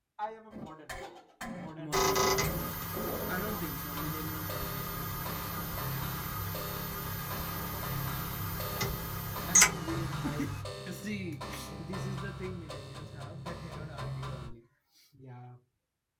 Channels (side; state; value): both; identical; correlation 1.00